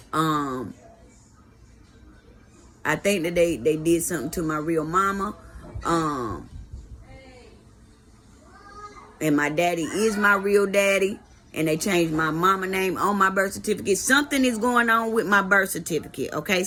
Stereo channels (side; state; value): both; identical; correlation 1.00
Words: I think that they did something to my real mama. And my daddy is my real daddy. And they changed my mama name on my birth certificate. Something is going on with my birth certificate, okay?